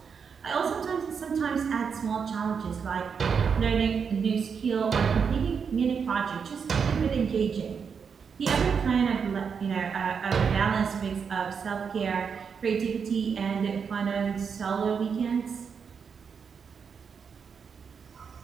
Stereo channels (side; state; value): left; quieter; 6.3 dB